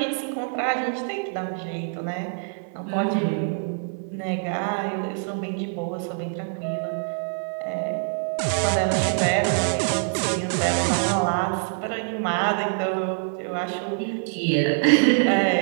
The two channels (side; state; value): left; silent; digital silence